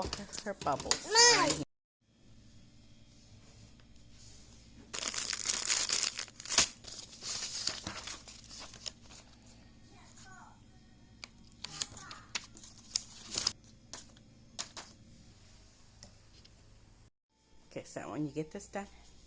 her bubbles. Okay, so when you get this done,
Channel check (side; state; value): both; identical; correlation 1.00